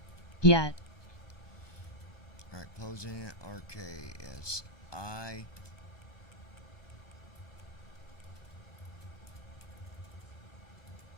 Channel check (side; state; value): right; late; 1.2 ms